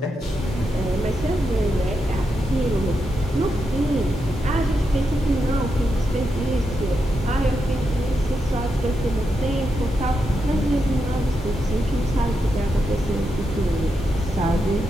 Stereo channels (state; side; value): normal; both; correlation 0.85